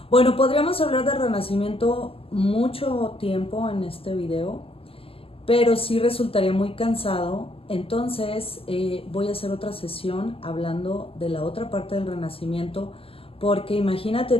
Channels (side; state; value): right; late; 0.27 ms